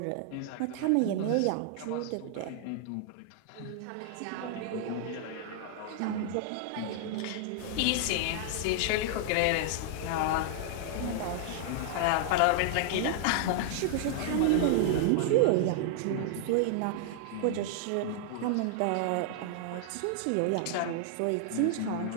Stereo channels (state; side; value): different; both; correlation -0.01